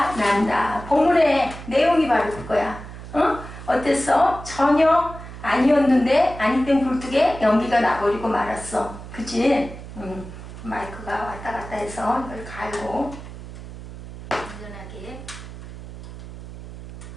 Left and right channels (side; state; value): right; noise; hum, 13 dB below the sound